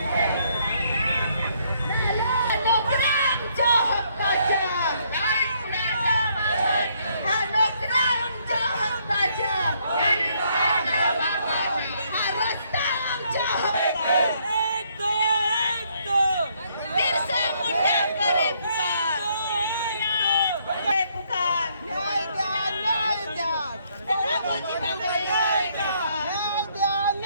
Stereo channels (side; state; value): both; inverted; correlation -0.69